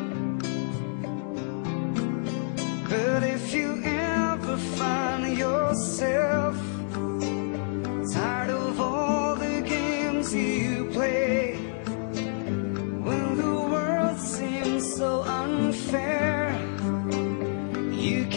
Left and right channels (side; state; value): right; silent; digital silence